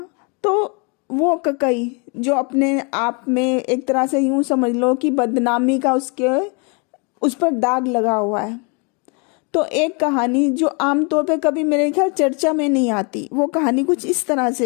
तो वो ककई जो अपने आप में एक तरह से यूं समझ लो कि बदनामी का उस पर दाग लगा हुआ है। तो एक कहानी जो आमतौर पे कभी मेरे ख्याल चर्चा में नहीं आती, वो कहानी कुछ इस तरह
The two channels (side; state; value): right; quieter; 33.3 dB